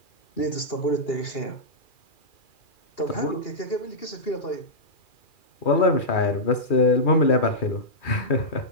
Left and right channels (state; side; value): late; right; 2.4 ms